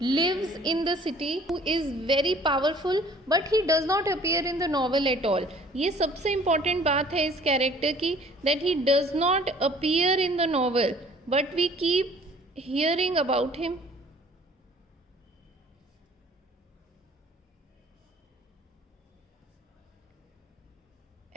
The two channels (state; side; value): normal; both; correlation 0.53